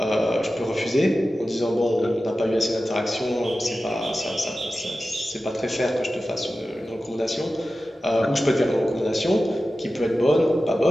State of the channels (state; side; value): normal; both; correlation 0.94